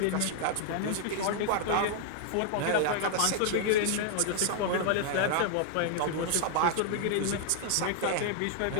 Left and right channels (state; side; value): different; both; correlation 0.00